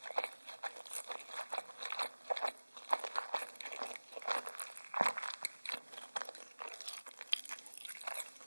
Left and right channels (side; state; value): both; inverted; correlation -1.00